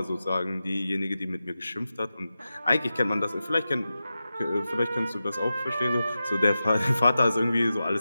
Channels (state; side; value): inverted; both; correlation -0.92